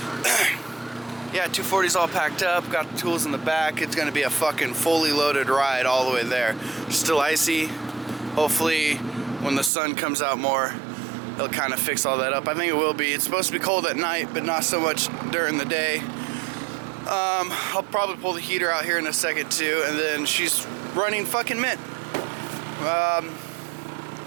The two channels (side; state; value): left; drops out; at 9.7 s